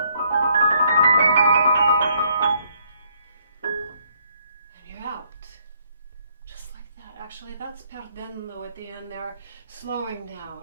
you're out. Just like that. Actually, that's perdendo at the end there, slowing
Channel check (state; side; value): inverted; both; correlation -0.68